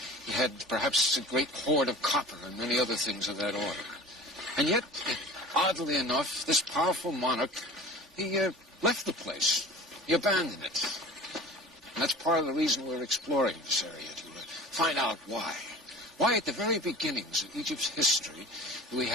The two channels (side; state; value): both; normal; correlation 0.40